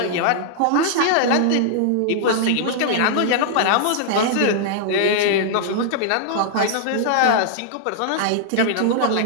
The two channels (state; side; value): different; both; correlation -0.01